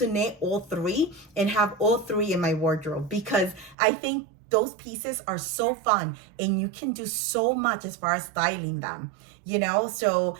knit all 3 and have all 3 in my wardrobe, because I think those pieces are so fun and you can do so much as far as styling them, you know? So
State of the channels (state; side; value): drops out; left; at 3.8 s